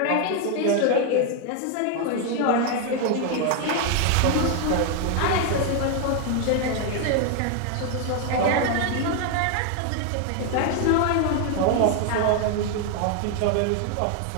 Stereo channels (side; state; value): both; different; correlation 0.01